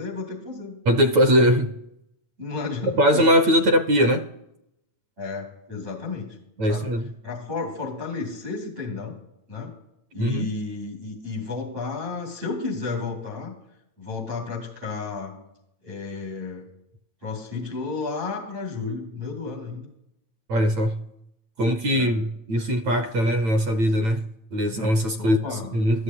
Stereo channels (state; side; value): late; left; 9.0 ms